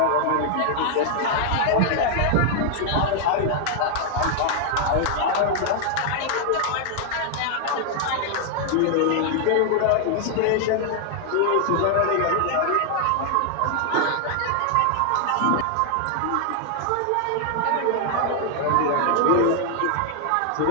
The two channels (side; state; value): both; different; correlation 0.00